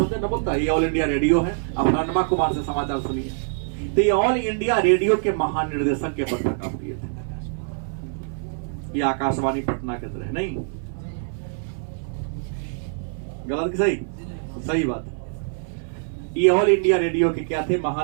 ना बोलता है, ये ऑल इंडिया रेडियो है। अब रणमा कुमार से समाचार सुनिए। तो ये ऑल इंडिया रेडियो के महानिर्देशक के पद पर काम किए थे। ये आकाशवाणी पटना के तरह नहीं, गलत कि सही? सही बात। ये ऑल इंडिया रेडियो के क्या थे?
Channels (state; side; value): silent; left; 58 dB below the other